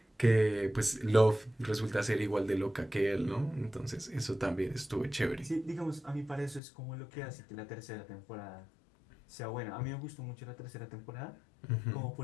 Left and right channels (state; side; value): drops out; right; at 6.6 s